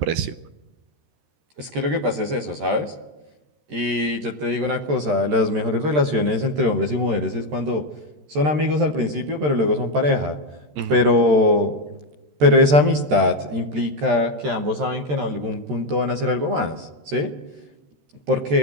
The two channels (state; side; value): late; left; 13 ms